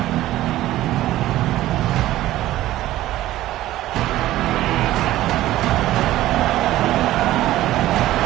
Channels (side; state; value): left; quieter; 15.1 dB